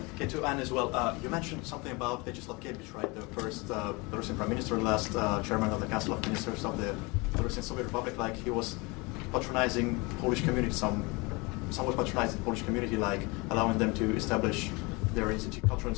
Okay, to Anne as well. You mentioned something about Vyacheslav Gebich, right? The first Belarusian prime minister, last chairman of the Council of Ministers of the Belarusian Soviet Republic. Like he was patronizing Polish community, somewhat patronizing the Polish community, like allowing them to establish their cultural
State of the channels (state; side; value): quieter; right; 26.6 dB